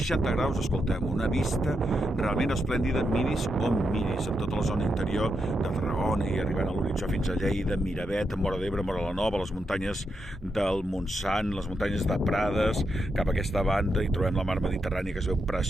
graus, escoltem, una vista realment esplèndida, miris on miris, amb tota la zona interior de Tarragona i arribant a l'horitzó fins a Lleida, Miravet, Móra d'Ebre, Móra la Nova, les muntanyes del Montsant, les muntanyes de Prades, cap a aquesta banda hi trobem la mar Mediterrània que es veu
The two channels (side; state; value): both; normal; correlation 0.84